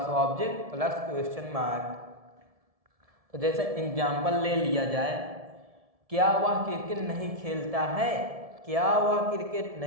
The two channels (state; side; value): late; left; 1.7 ms